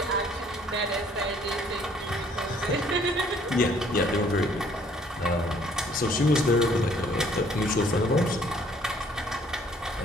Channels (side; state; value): both; normal; correlation 0.61